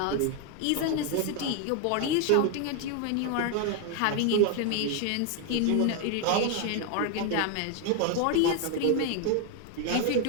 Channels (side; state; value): both; different; correlation 0.01